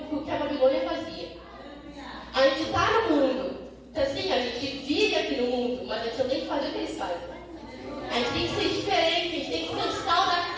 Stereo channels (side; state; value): both; identical; correlation 1.00